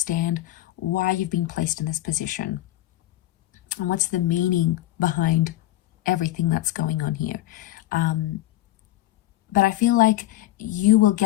why you've been placed in this position and what's the meaning behind everything that's going on here. But I feel like you will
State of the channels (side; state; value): right; quieter; 15.4 dB